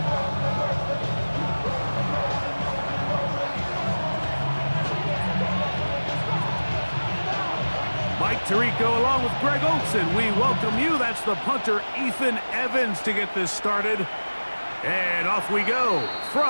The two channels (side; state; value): both; inverted; correlation -1.00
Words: Mike Tirico along with Greg Olson. We welcome you. That's the punter, Ethan Evans, to get this started. And off we go